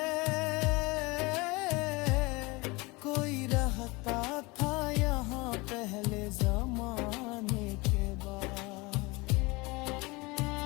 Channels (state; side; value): quieter; right; 24.5 dB